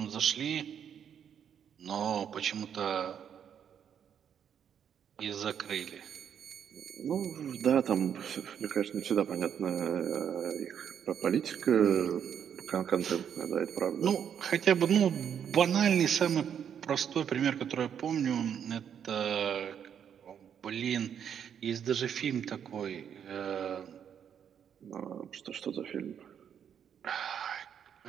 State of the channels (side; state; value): left; quieter; 8.4 dB